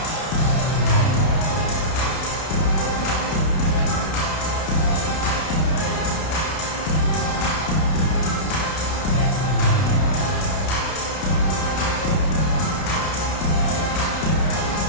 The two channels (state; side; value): late; right; 32 ms